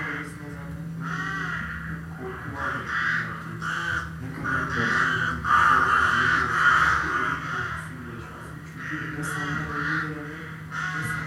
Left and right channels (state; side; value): identical; both; correlation 1.00